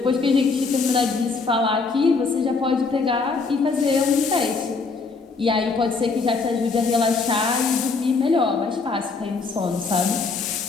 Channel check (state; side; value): quieter; right; 4.4 dB